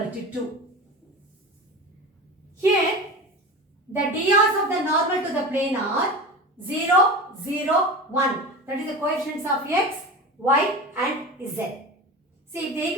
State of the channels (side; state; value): both; normal; correlation 0.30